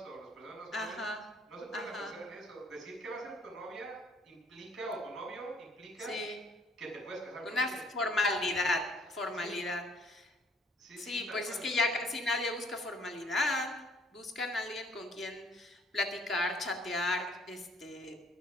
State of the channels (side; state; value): both; normal; correlation 0.60